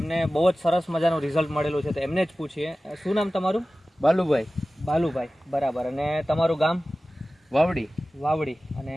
બહુ જ સરસ મજાનું રિઝલ્ટ મળેલું છે. તો એમને જ પૂછીએ, શું નામ તમારું? બાલુભાઈ. બાલુભાઈ, બરાબર. અને તમારું ગામ? વાવડી. વાવડી. અને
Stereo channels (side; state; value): both; normal; correlation 0.96